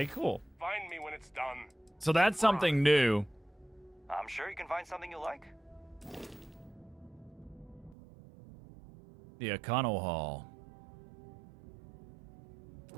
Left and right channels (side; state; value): left; drops out; at 8.0 s